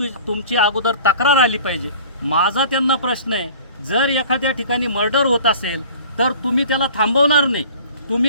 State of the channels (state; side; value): inverted; both; correlation -0.45